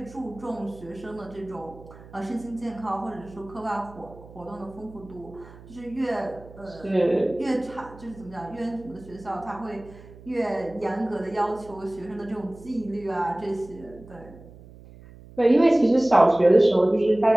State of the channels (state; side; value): noise; right; hum, 19 dB below the sound